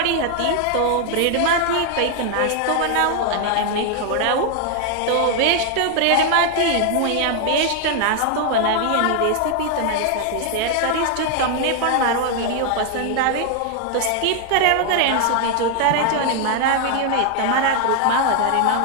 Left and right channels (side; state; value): both; different; correlation 0.00